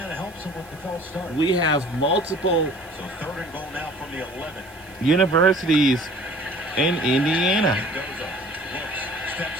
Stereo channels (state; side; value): noise; right; hiss, 25 dB below the sound